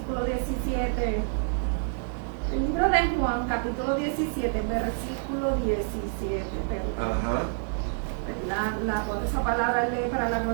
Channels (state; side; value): silent; left; 60 dB below the other